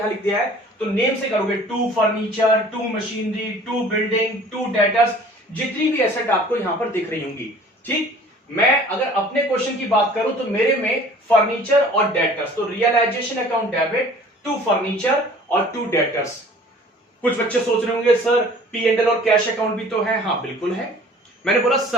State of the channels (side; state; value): both; normal; correlation 0.49